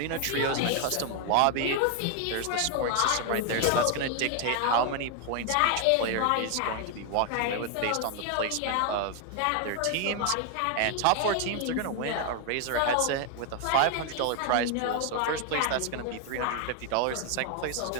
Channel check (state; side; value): different; both; correlation 0.00